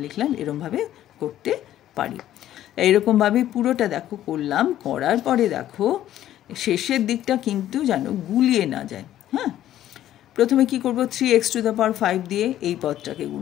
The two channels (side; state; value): right; quieter; 12.5 dB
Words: লিখলাম। এরমভাবে করতে পারি। এইরকমভাবে পুরোটা দেখো করলাম। করার পরে দেখো শেষের দিকটা কিন্তু যেন গুলিয়ে না যায়। হ্যাঁ, প্রথমে কি করব, 3x⁵ দিয়ে এই পদটাকে